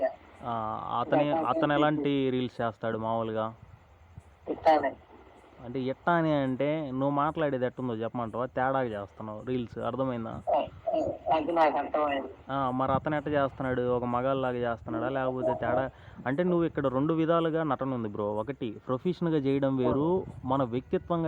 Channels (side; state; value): both; identical; correlation 1.00